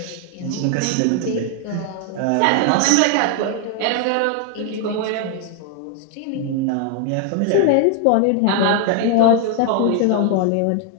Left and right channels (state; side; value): different; both; correlation 0.00